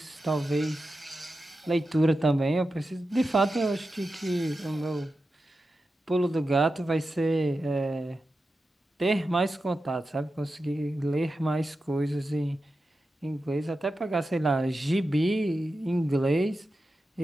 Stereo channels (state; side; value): normal; both; correlation 0.91